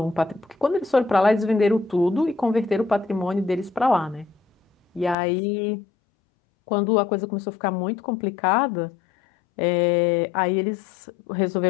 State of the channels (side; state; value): right; drops out; at 5.2 s